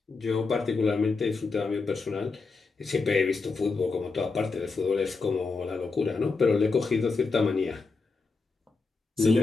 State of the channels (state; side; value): quieter; right; 4.2 dB